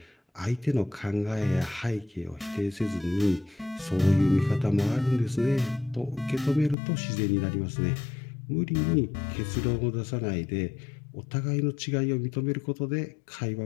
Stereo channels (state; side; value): drops out; right; at 6.8 s